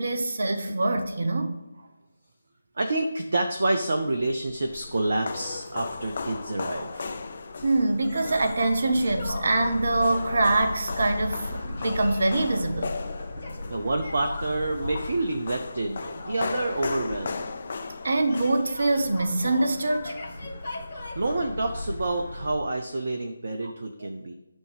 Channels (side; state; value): both; inverted; correlation -0.91